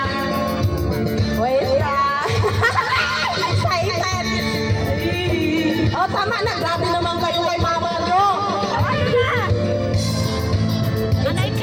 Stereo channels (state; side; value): identical; both; correlation 1.00